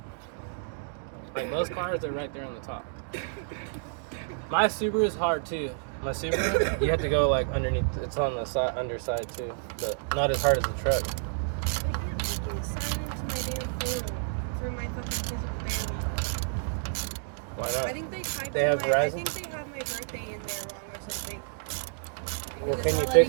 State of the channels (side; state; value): left; silent; digital silence